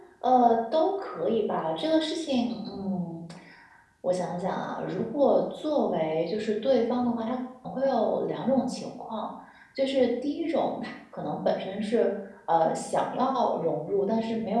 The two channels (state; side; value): identical; both; correlation 1.00